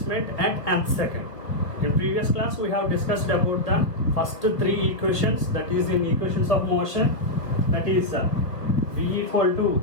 at nth second. In previous class we have discussed about the first three equations, that is in equations of motion, that is V equal to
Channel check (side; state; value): right; late; 2.2 ms